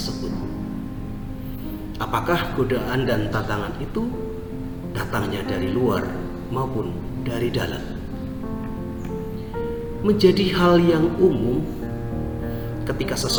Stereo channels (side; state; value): both; identical; correlation 1.00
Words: Apakah godaan dan tantangan itu datangnya dari luar maupun dari dalam? Menjadi hal yang umum ketika